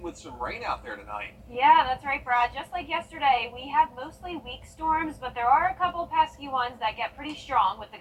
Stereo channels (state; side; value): identical; both; correlation 1.00